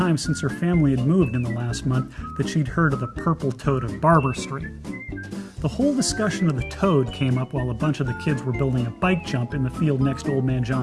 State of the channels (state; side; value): identical; both; correlation 1.00